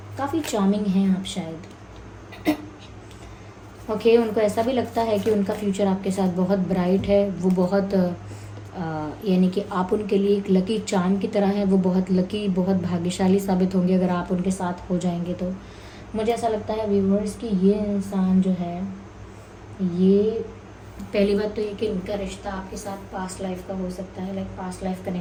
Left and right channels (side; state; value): both; identical; correlation 1.00